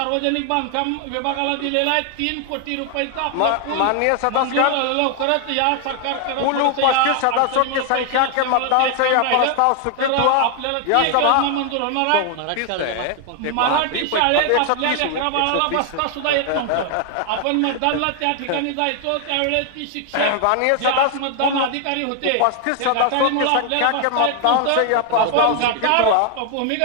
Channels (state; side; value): different; both; correlation 0.00